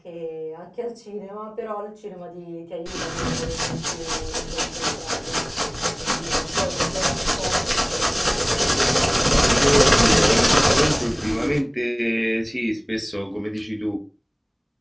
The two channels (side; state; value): both; identical; correlation 1.00